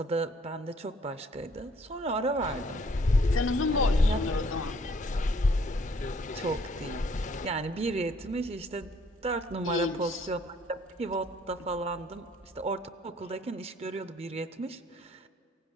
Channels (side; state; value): both; normal; correlation 0.62